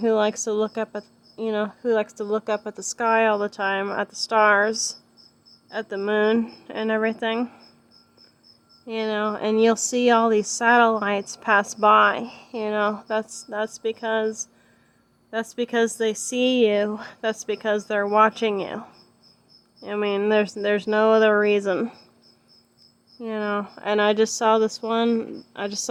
likes to look up at, the sky all the time, at the stars, at the moon and everything, and you'll see all these satellites pass by. That's because they see you. That's because they're watching you. I mean, there's no other reason. And I just saw this one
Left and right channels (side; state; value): both; identical; correlation 1.00